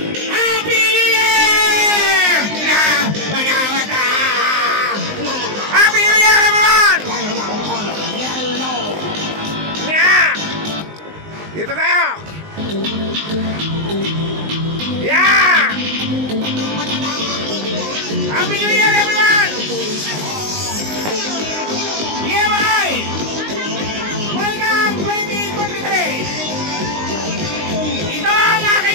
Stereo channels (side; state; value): left; late; 19 ms